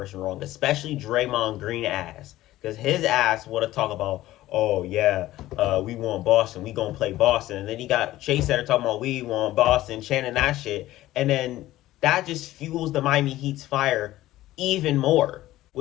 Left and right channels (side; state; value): right; quieter; 15.6 dB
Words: wrong, especially Draymond Green ass. Because his ass want to talk about, oh yeah, we want Boston, we gonna play Boston. And then he got Chase there talking about we want Boston, chanting that shit. And then that just fuels the Miami Heat's fire even more,